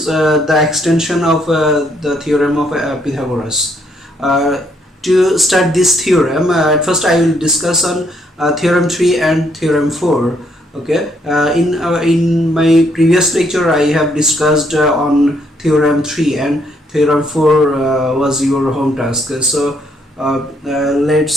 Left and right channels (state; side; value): normal; both; correlation 0.71